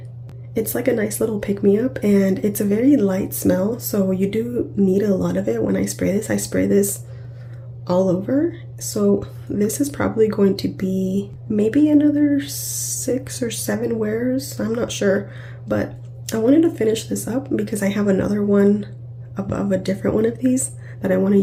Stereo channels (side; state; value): both; identical; correlation 1.00